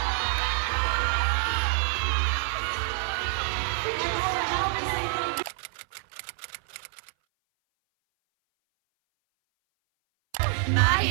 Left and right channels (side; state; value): left; silent; 58 dB below the other